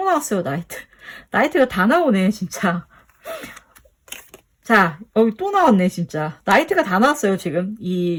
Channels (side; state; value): both; identical; correlation 1.00